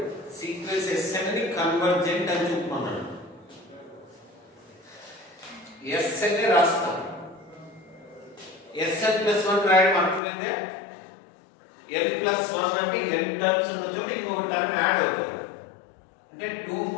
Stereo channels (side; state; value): right; drops out; at 10.2 s